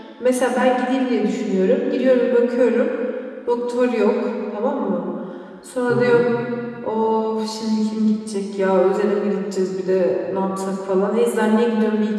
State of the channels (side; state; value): both; identical; correlation 1.00